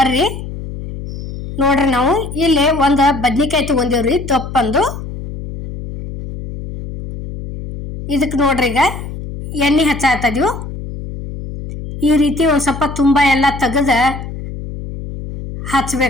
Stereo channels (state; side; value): noise; left; hum, 9 dB below the sound